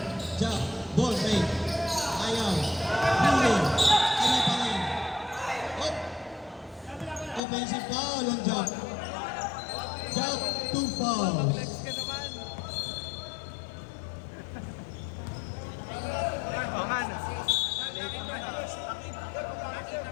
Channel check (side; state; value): right; drops out; at 7.4 s